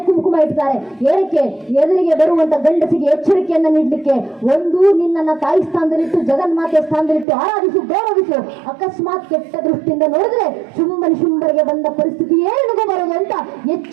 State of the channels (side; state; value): left; drops out; at 7.2 s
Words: ಕುಂಕುಮ ಇಡ್ತಾರೆ. ಏನಕ್ಕೆ? ಎದುರಿಗೆ ಬರುವಂತ ಗಂಡಸಿಗೆ ಎಚ್ಚರಿಕೆಯನ್ನ ನೀಡಲಿಕ್ಕೆ. ಒಂದು, ನಿನ್ನನ್ನ ತಾಯಿ ಸ್ಥಾನದಲ್ಲಿಟ್ಟು ಜಗನ್ಮಾತೆ ಸ್ಥಾನದಲ್ಲಿಟ್ಟು ಆರಾಧಿಸು, ಗೌರವಿಸು. ಅಕಸ್ಮಾತ್ ಕೆಟ್ಟ ದೃಷ್ಟಿಯಿಂದ ನೋಡಿದ್ರೆ ಶುಂಭನಿ ಶುಂಭರಿಗೆ ಬಂದ ಪರಿಸ್ಥಿತಿ ಏನಿಗೂ ಬರೋದು ಅಂತ